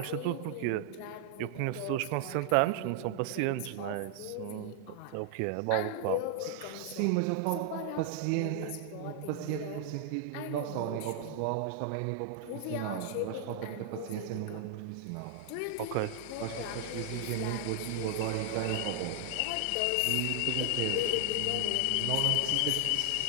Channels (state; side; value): different; both; correlation 0.00